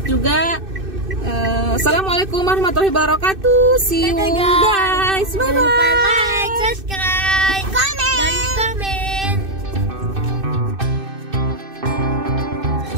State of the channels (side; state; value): left; late; 2.6 ms